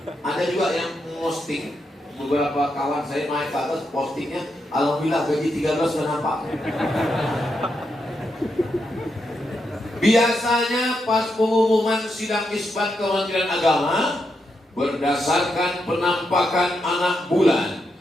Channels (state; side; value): normal; both; correlation 0.83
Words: ada juga yang posting. Beberapa kawan saya naik ke atas postingnya, alhamdulillah gaji 13 sudah nampak. Biasanya pas pengumuman sidang isbat Kementerian Agama, berdasarkan penampakan anak bulan